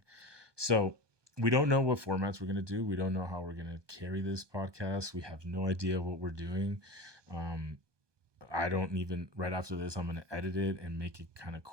So we don't know what formats we're going to do. We don't know how we're going to carry this podcast. We have no idea what we're doing. Um, I don't even, right after this, I'm going to edit it and make it kind of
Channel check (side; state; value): left; late; 1.2 ms